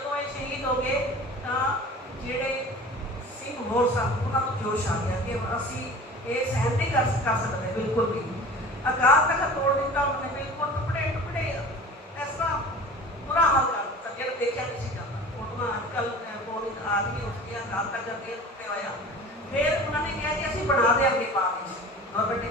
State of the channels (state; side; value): normal; both; correlation 0.40